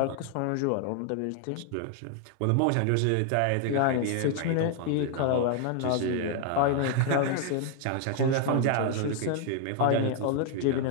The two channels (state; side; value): different; both; correlation 0.00